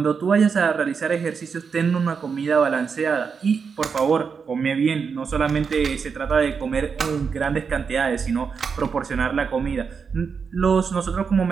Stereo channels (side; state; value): left; quieter; 5.9 dB